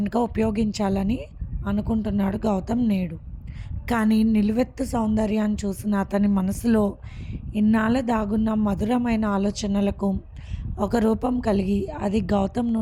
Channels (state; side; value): identical; both; correlation 1.00